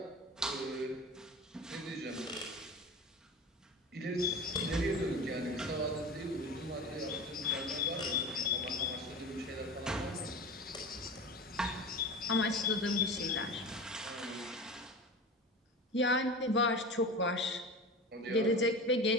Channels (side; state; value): both; normal; correlation 0.31